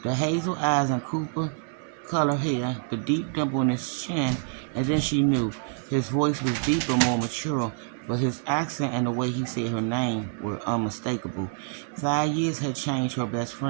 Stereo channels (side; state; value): left; silent; 60 dB below the other